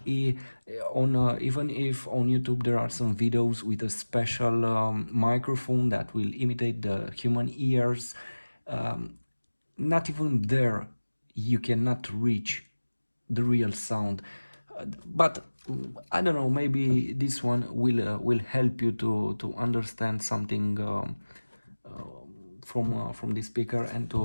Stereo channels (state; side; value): inverted; both; correlation -1.00